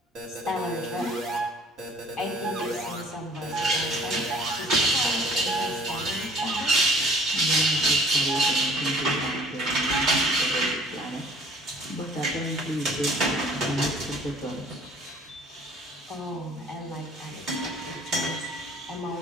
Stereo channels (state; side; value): normal; both; correlation 0.53